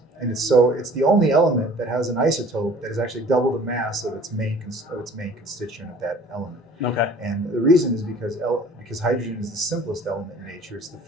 and it's the only element that has an isotope that is actually double the mass of its main constituent of that element. Okay. And the reason is because hydrogen is the simplest element in nature. It's the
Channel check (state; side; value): normal; both; correlation 0.49